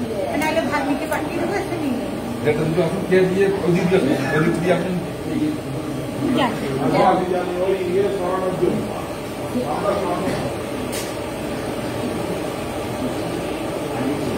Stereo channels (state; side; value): identical; both; correlation 1.00